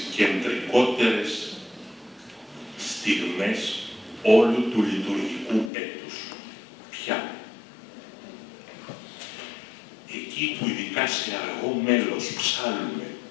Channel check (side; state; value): right; drops out; at 5.7 s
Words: κεντρικότερες στιγμές όλου του λειτουργικού έτους. Ποια? Εκεί που ειδικά σε αργό μέλος ψάλλουμε